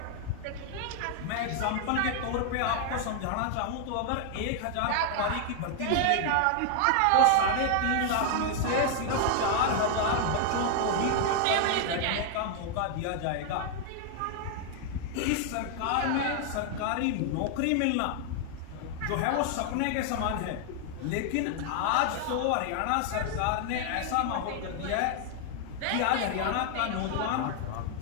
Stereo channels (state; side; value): different; both; correlation 0.00